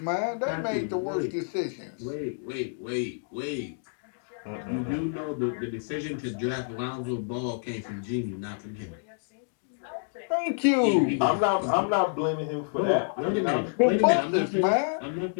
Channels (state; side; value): silent; right; digital silence